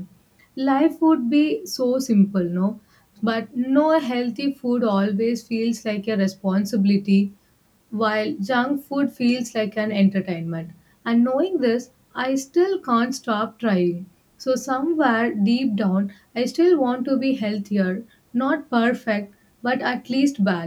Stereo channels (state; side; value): identical; both; correlation 1.00